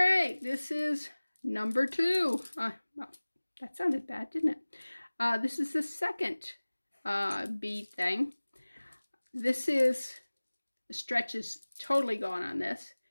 this is number 2. Well, that sounded bad, didn't it? This is the second bead thing. This is, the stretch is totally gone on this.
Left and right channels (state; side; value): inverted; both; correlation -1.00